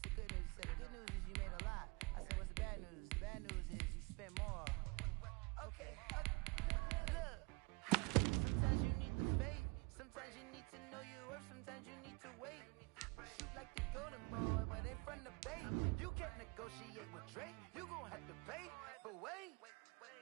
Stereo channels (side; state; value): left; quieter; 28.9 dB